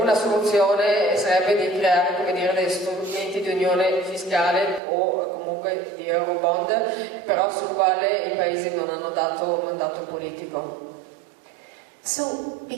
soluzione sarebbe di creare, come dire, degli strumenti di unione fiscale o comunque di Eurobond, però sul quale i paesi non hanno dato mandato politico. So,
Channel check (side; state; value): left; drops out; at 4.8 s